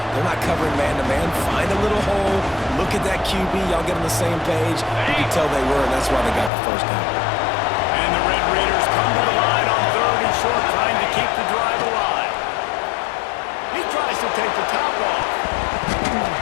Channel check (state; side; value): drops out; right; at 6.5 s